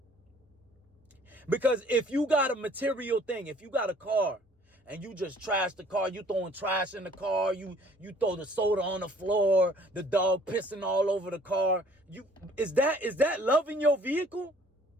Because if you got a material thing, if you got a car, and you just trash the car, you throwing trash in the car, you throw the soda on the floor, the dog pissing all over the car. Is that loving your vehicle?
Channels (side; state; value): both; normal; correlation 0.56